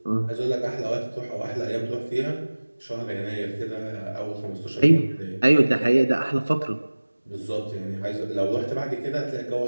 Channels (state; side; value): inverted; both; correlation -1.00